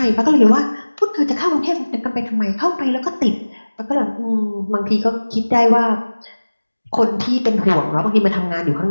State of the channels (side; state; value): both; inverted; correlation -1.00